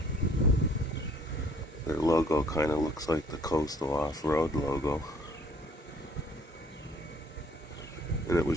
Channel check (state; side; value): normal; both; correlation 0.57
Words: Their logo kind of looks like the Coastal Off-Road logo. And it